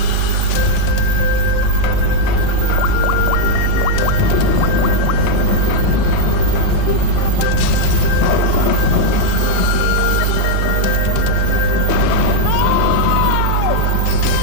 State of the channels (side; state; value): both; different; correlation -0.01